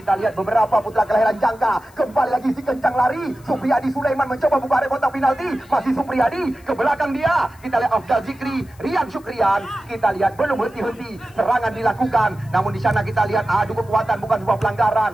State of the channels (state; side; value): noise; left; hiss, 28 dB below the sound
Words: lihat beberapa putra kelahiran Jangka. Kembali lagi si kencang lari. Supriyadi Sulaiman mencoba buka area kotak penalti. Masih Supriyadi. Ke belakang dia. Kita lihat Afdal Zikri. Rian Syukrian. Kita lihat belum henti-henti. Serangan dilakukan. Namun di sana kita lihat adu kekuatan bukan sebuah pelanggaran.